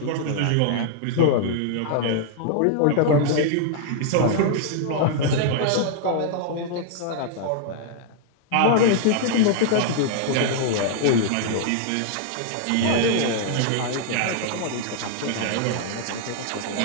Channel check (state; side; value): different; both; correlation -0.01